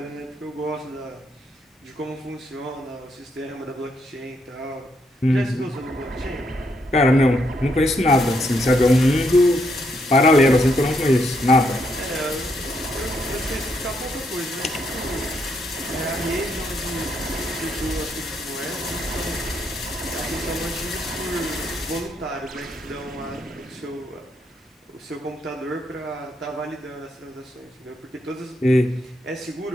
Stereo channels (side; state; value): both; normal; correlation 0.76